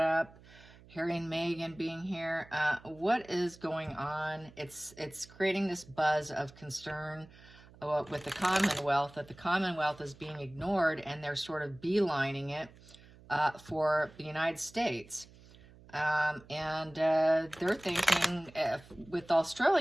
Harry and Meghan being here. What is going on? It's creating this buzz of concern with the Commonwealth, that the Commonwealth is being ignored, and they're sort of beelining it for the United States. They're thinking, with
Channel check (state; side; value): noise; right; hum, 23 dB below the sound